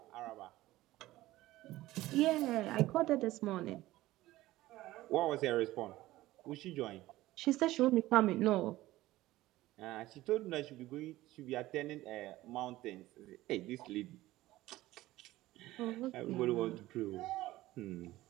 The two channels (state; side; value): quieter; left; 16.8 dB